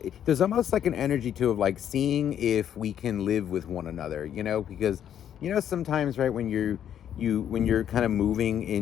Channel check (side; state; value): right; quieter; 9.8 dB